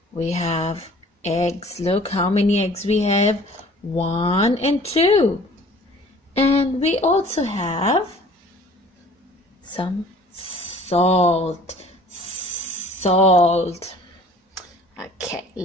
We have eggs. Look how many eggs we have. 1 and 2. And we also have some salt. Okay,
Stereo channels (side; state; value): both; normal; correlation 0.50